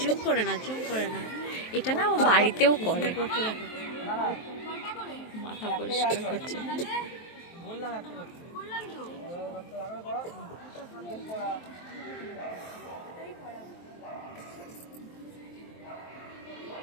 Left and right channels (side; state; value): right; late; 23 ms